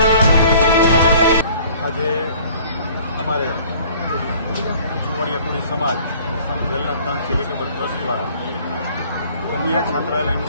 हमारे जुवाड़ियापुरी समाज संत वेलनाथ चेरिटेबल ट्रस्ट द्वारा कन्या छात्रालय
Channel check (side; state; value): both; inverted; correlation -0.53